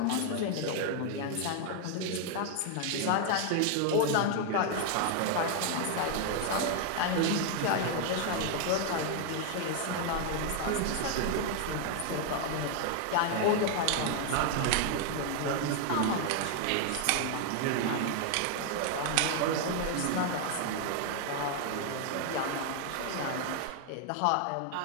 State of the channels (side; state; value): both; different; correlation 0.00